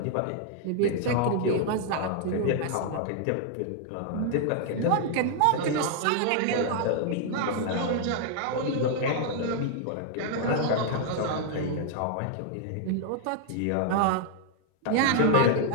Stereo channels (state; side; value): different; both; correlation 0.00